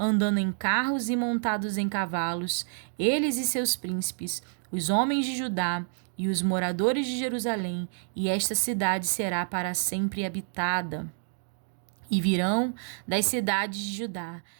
em carros e montados em cavalos, eles e seus príncipes, os homens de Judá e os moradores de Jerusalém, e esta cidade será para sempre habitada. E virão das cidades de Judá,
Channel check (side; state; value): left; silent; digital silence